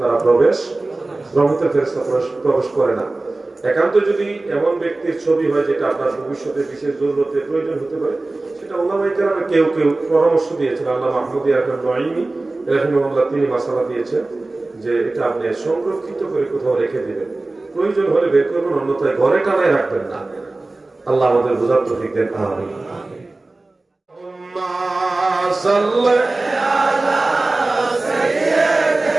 রহমতের ফেরেশতা প্রবেশ করে না। একান্ত যদি এমন ব্যক্তির ছবি হয় যেটা আপনার ভবিষ্যতে বিশেষ জরুরতে প্রয়োজন হতে পারে, সেটা ওলামায়ে কেরামে কেউ পরামর্শ দিয়েছেন। আল্লামা মাহমুদ নঈমি রাহিমাহুল্লাহ তিনি মাসালা দিয়েছেন যে এটা আপনি সংরক্ষিত করে কোথাও রেখে দিবেন, প্রয়োজন হলে বের করবেন, অন্যথায় ঘরে টানায় রাখবেন না। আল্লাহ আমাদের বোঝার তৌফিক দেন, আমিন।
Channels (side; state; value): left; quieter; 3.1 dB